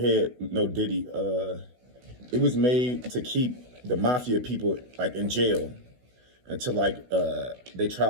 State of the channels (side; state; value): left; late; 16 ms